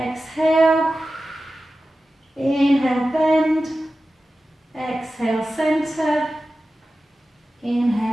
Inhale, bend. Exhale, center.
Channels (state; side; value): normal; both; correlation 0.94